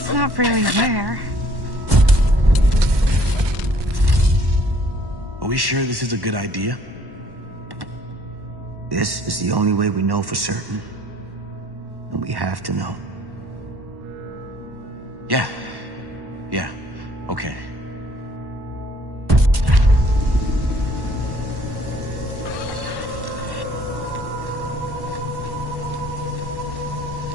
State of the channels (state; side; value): late; left; 1.1 ms